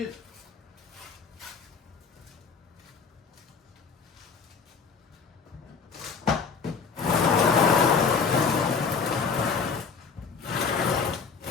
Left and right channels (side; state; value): right; quieter; 5.6 dB